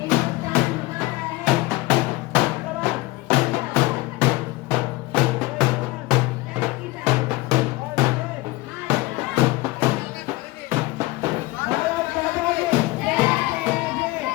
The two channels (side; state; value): right; quieter; 20.7 dB